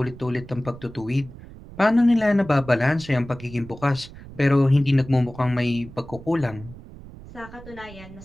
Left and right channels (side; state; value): right; noise; rumble, 17 dB below the sound